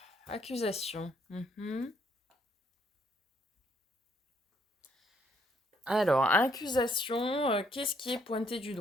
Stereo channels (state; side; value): normal; both; correlation 0.69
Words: accusation. Alors, accusation, qu'est-ce qui est pointé du